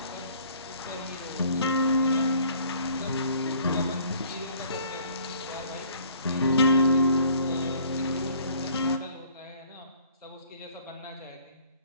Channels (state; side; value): inverted; both; correlation -0.57